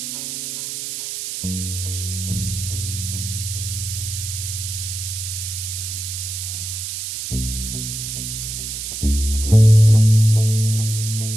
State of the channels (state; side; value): noise; right; hiss, 5 dB below the sound